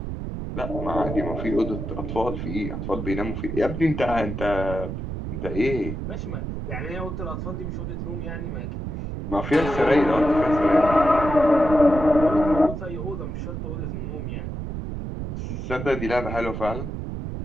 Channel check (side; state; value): right; noise; rumble, 5 dB below the sound